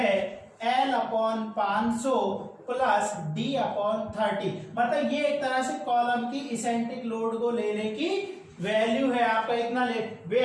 L upon 500 plus D upon 30, मतलब ये एक तरह से कॉलम की इसेंट्रिक लोड को लेने की वैल्यू है आपका इतना ले,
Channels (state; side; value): identical; both; correlation 1.00